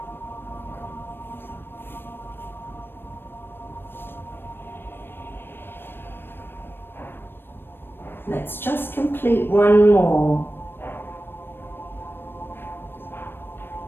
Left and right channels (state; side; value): late; right; 0.10 ms